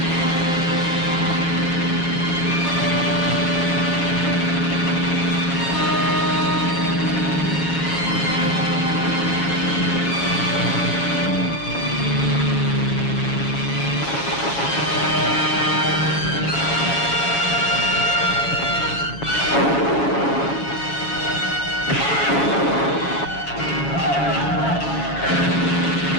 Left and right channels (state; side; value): late; right; 7.6 ms